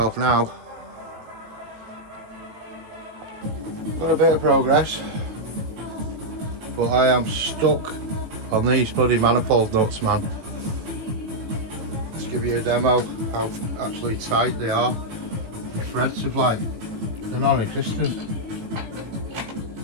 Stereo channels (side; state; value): left; late; 18 ms